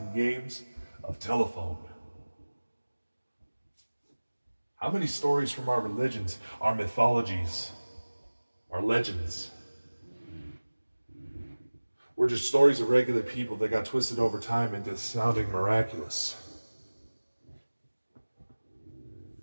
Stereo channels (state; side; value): inverted; both; correlation -1.00